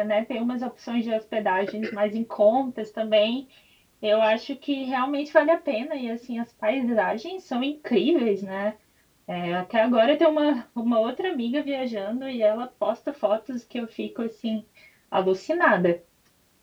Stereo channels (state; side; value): identical; both; correlation 1.00